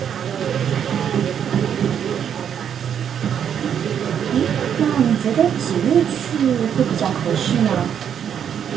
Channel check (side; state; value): left; quieter; 8.5 dB